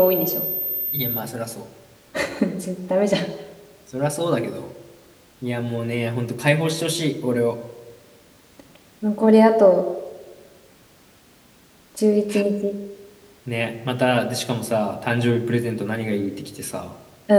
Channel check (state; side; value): identical; both; correlation 1.00